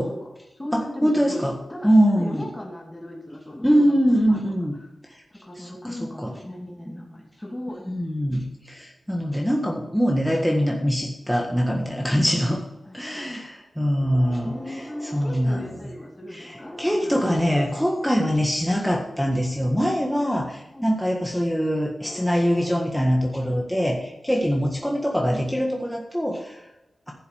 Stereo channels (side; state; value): both; normal; correlation 0.96